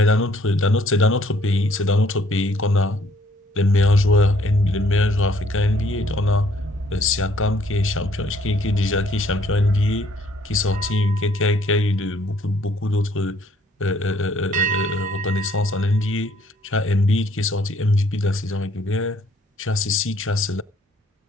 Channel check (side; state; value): both; normal; correlation 0.63